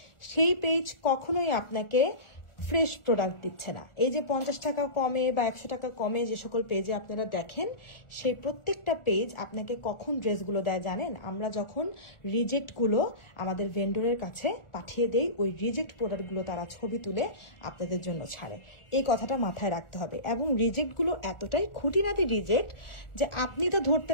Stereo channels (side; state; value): right; late; 1.4 ms